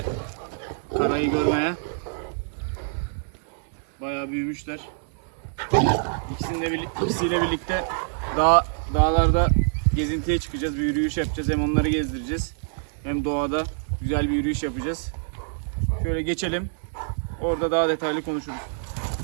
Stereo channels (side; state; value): left; silent; digital silence